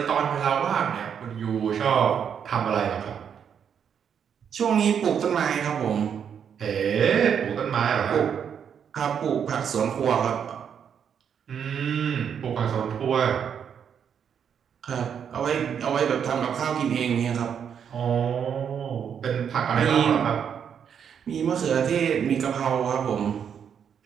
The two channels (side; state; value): left; quieter; 7.8 dB